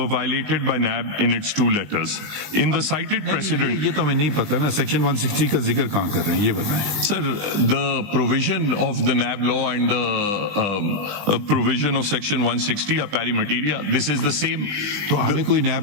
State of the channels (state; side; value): late; left; 20 ms